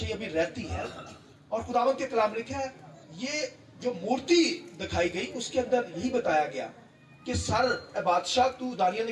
ابھی رہتی ہے. اور خداوند کے کلام لکھا ہے یہ جو مورتی دکھائی گئی اس کے اندر یہی بتایا گیا کہ سر اے بادشاہ تو، دانیل نے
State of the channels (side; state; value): both; identical; correlation 1.00